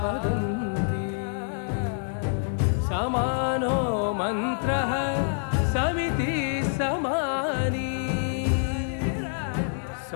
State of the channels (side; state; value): right; silent; 60 dB below the other